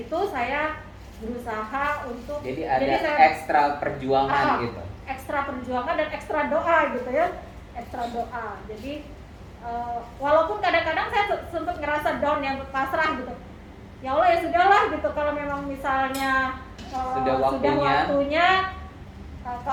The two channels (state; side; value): identical; both; correlation 1.00